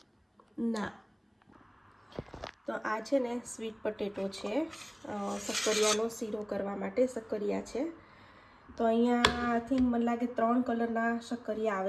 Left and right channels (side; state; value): both; identical; correlation 1.00